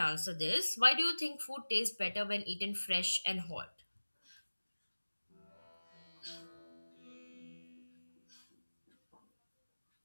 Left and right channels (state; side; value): inverted; both; correlation -1.00